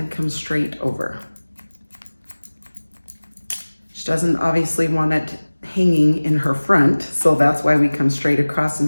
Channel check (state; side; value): inverted; both; correlation -1.00